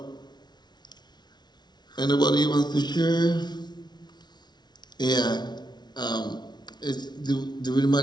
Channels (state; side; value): late; right; 0.20 ms